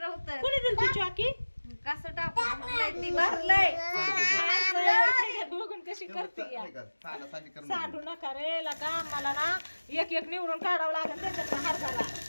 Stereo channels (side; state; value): both; inverted; correlation -1.00